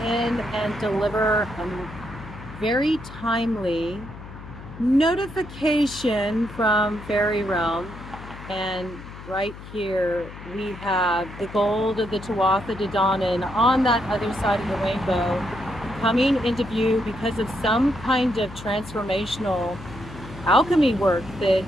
in and deliver a very timely notification from FAERIE REALM. And right here we have the gold of the Tuatha De Danann on that other side of the rainbow coming into view because of some kind of transformational alchemy work that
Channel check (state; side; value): noise; left; hum, 14 dB below the sound